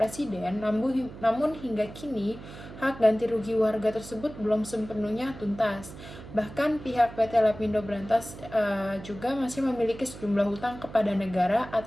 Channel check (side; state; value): right; noise; hum, 14 dB below the sound